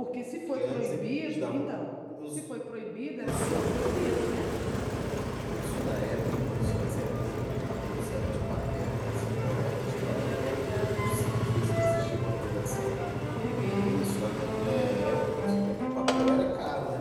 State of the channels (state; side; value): identical; both; correlation 1.00